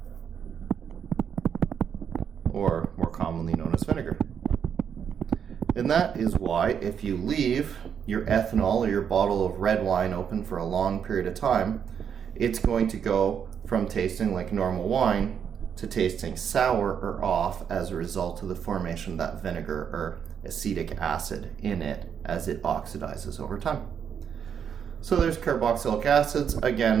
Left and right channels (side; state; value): left; quieter; 7.8 dB